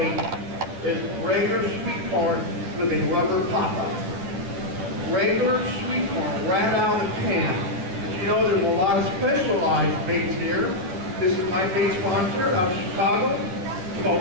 is regular sweet corn with a rubber pop-up. Regular sweet corn right out of the can. But you know, there's a lot of specialized baits here. This is my bait sponsor out of Chicago,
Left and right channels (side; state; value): left; late; 11 ms